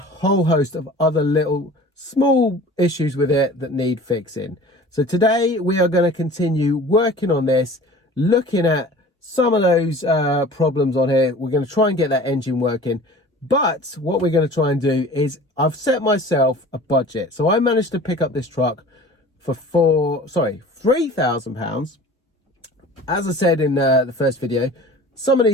host of other little small issues with it that need fixing. So today we are going to continue working on this, looking at some of those problems on here. We're going to try and get that engine working. But what we're going to try and do is I've set myself a budget. So I managed to pick up this truck for £3,000. As I said in the first video, some of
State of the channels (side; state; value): both; normal; correlation 0.43